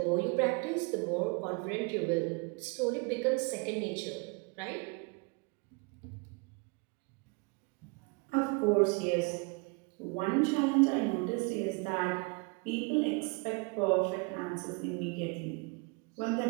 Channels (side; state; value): left; quieter; 31.8 dB